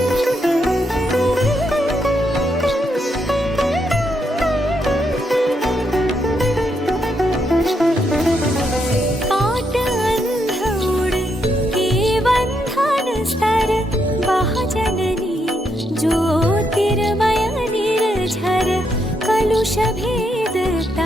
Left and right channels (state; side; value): normal; both; correlation 0.79